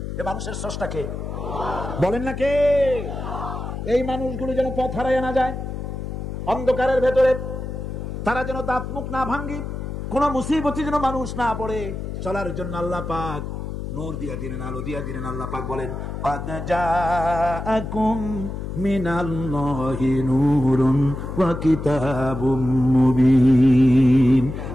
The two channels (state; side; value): noise; left; hum, 6 dB below the sound